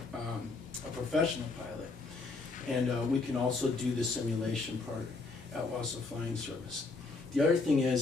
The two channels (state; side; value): quieter; right; 3.9 dB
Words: a professional pilot. And we can also do the simulation part at Wausau Flying Service. The other thing